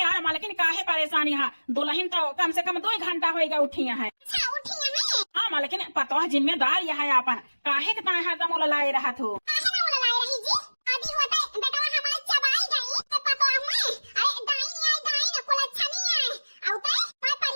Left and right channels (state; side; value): inverted; both; correlation -1.00